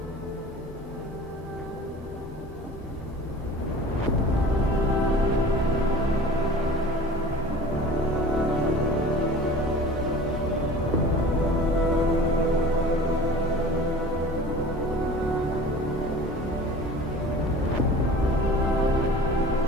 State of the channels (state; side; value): normal; both; correlation 0.41